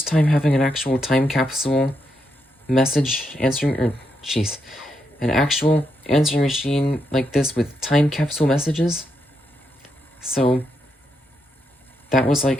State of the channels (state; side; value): normal; both; correlation 0.81